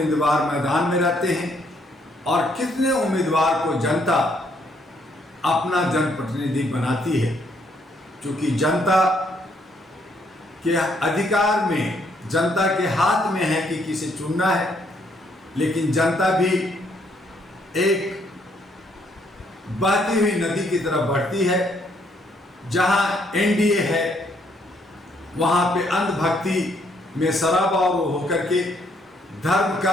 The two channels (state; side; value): normal; both; correlation 0.70